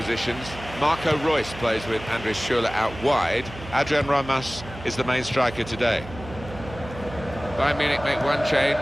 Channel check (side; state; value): right; noise; hum, 14 dB below the sound